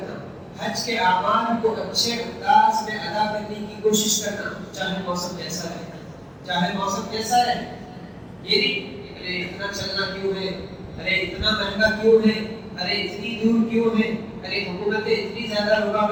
حج کے اعمال کو اچھے انداز میں ادا کرنے کی کوشش کرنا، چاہے موسم کیسا رہے، چاہے موسم کیسا رہے۔ یہ نہیں ارے اتنا چلنا کیوں ہے، ارے اتنا مہنگا کیوں ہے، ارے اتنی دور کیوں ہے، ارے حکومتیں اتنی زیادہ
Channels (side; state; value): both; identical; correlation 1.00